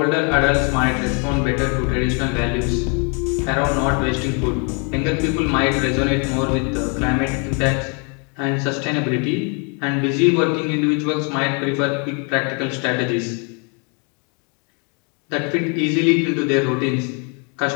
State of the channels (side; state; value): right; quieter; 36.0 dB